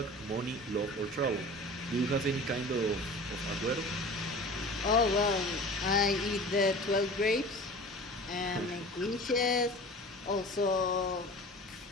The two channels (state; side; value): normal; both; correlation 0.39